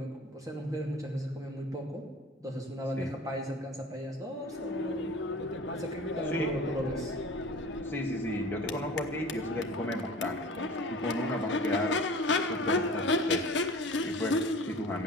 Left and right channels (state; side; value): normal; both; correlation 0.41